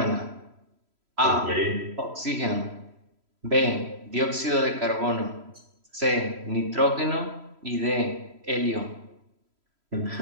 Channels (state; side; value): late; left; 3.0 ms